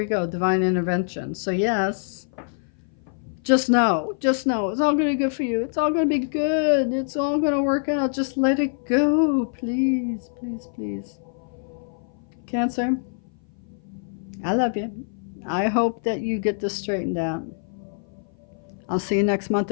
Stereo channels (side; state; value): right; silent; 57 dB below the other